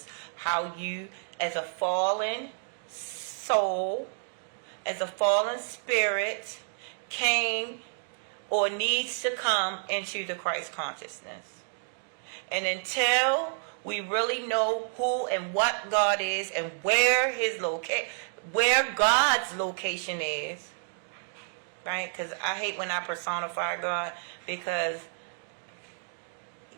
How you, as a fallen soul, as a fallen spirit, came or needs to come into the Christ consciousness. And until we really know who and what God is and where where God's location is, right? Because I hate when I personify God, because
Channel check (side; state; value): left; silent; 58 dB below the other